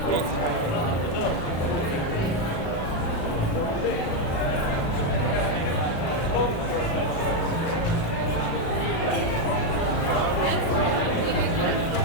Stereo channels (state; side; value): late; right; 36 ms